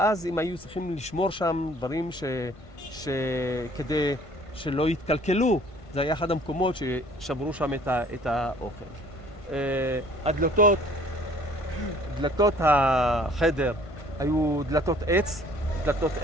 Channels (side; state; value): right; late; 1.5 ms